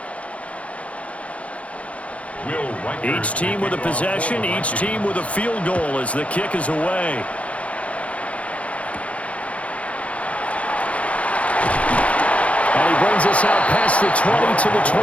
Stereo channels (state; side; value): late; right; 0.064 ms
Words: Each team with a possession, each team with a field goal as the kick is away. And he brings us out past the 20 to the